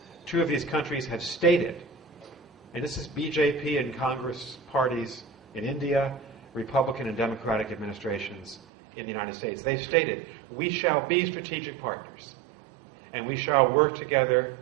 2 of these countries have stated, and this is BJP and Congress parties in India, Republican and Democratic administrations in the United States. They've stated, we shall be strategic partners, and we shall work together,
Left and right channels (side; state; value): left; drops out; at 8.6 s